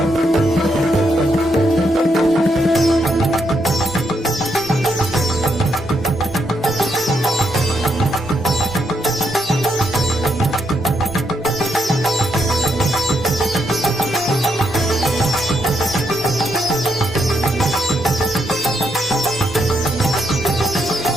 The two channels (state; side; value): normal; both; correlation 0.78